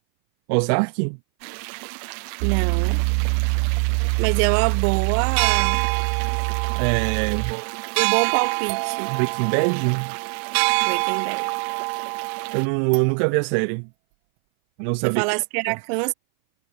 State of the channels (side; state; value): left; silent; 59 dB below the other